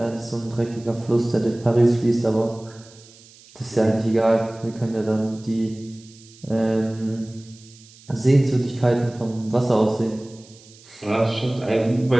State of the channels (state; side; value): noise; right; hiss, 24 dB below the sound